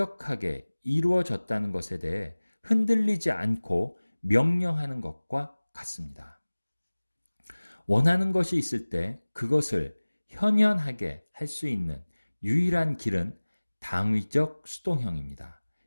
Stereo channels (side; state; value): both; inverted; correlation -1.00